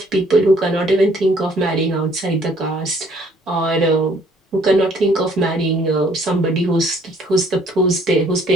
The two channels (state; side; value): normal; both; correlation 0.61